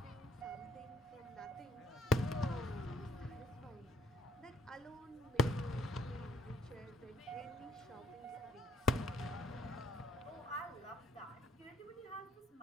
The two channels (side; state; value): both; normal; correlation 0.66